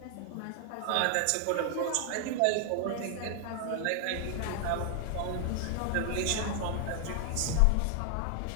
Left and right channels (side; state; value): both; different; correlation 0.00